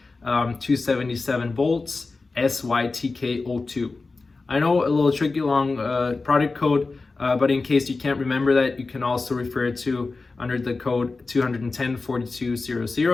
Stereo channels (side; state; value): right; quieter; 3.8 dB